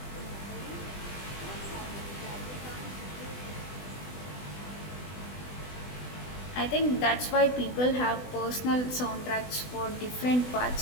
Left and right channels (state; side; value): late; right; 20 ms